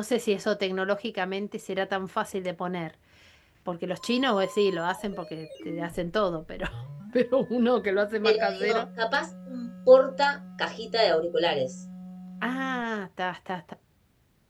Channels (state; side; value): identical; both; correlation 1.00